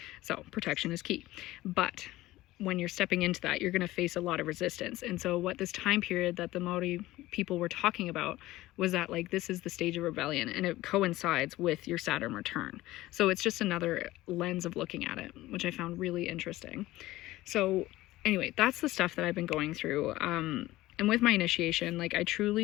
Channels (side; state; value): right; quieter; 17.2 dB